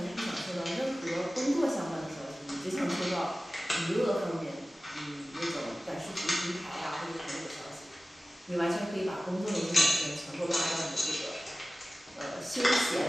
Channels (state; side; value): normal; both; correlation 0.96